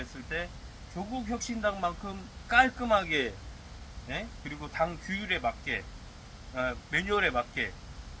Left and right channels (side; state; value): both; identical; correlation 1.00